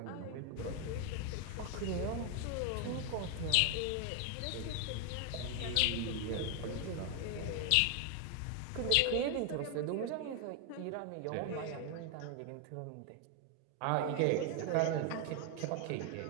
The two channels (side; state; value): both; different; correlation 0.01